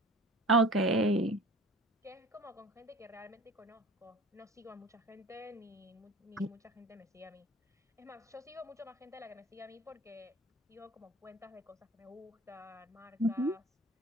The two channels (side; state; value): both; normal; correlation 0.41